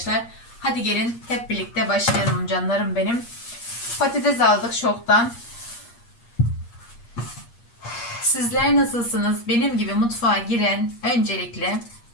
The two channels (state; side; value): late; right; 8.5 ms